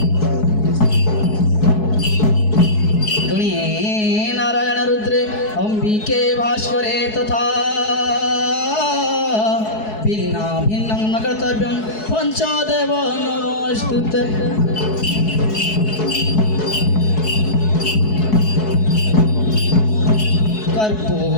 नारायण रुद्रे अंबिके भास्करे तथा भिन्ना भिन्नं न कर्तव्यं पञ्चदेव नमोस्तुते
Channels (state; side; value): late; right; 4.7 ms